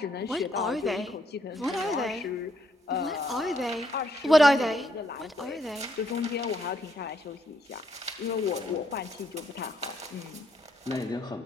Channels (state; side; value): normal; both; correlation 0.73